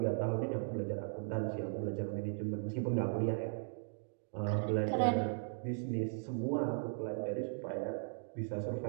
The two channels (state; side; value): silent; left; digital silence